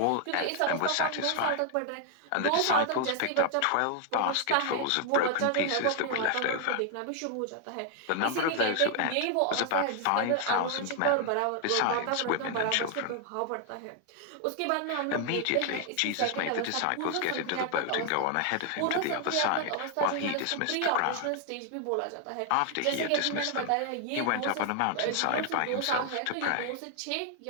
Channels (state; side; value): different; both; correlation 0.00